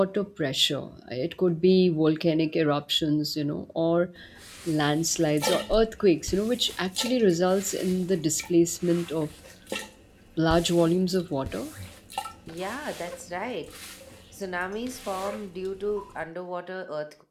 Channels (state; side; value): identical; both; correlation 1.00